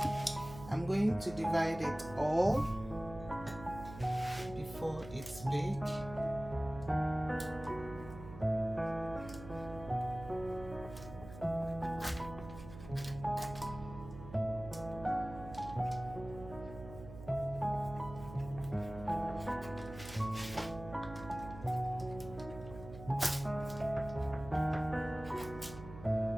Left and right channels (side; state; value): right; noise; hum, 14 dB below the sound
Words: I'm going to divide it all before it's baked.